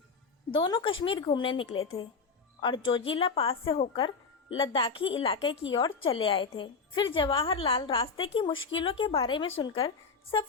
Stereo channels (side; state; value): right; quieter; 5.0 dB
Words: दोनों कश्मीर घूमने निकले थे और जोजिला पास से होकर लद्दाखी इलाके की ओर चले आए थे। फिर जवाहरलाल रास्ते की मुश्किलों के बारे में सुनकर